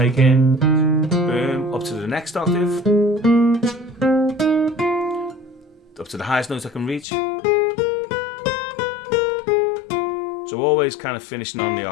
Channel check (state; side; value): drops out; right; at 7.1 s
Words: in. Boom, up to the next octave. Up to the highest notes I can reach. So always kind of finishing on the